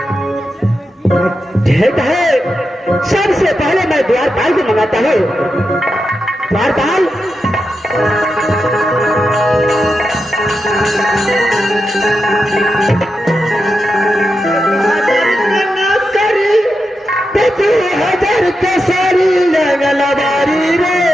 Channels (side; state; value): both; normal; correlation 0.88